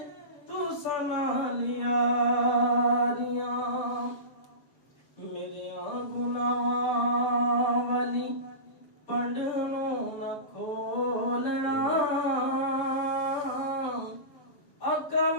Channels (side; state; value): right; late; 6.9 ms